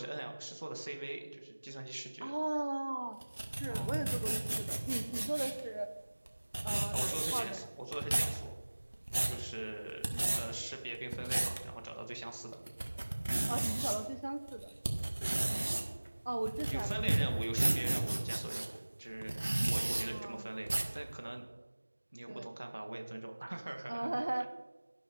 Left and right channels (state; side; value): inverted; both; correlation -1.00